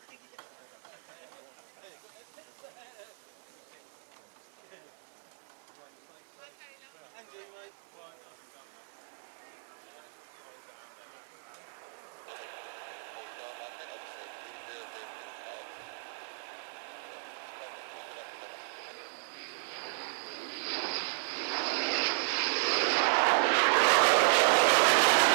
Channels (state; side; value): silent; left; 55 dB below the other